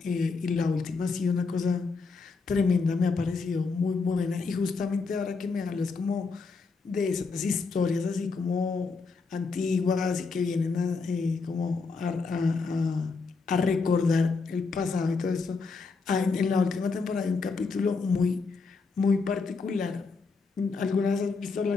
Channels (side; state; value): right; quieter; 4.5 dB